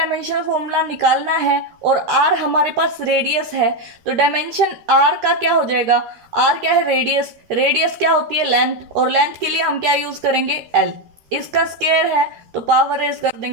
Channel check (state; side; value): late; left; 13 ms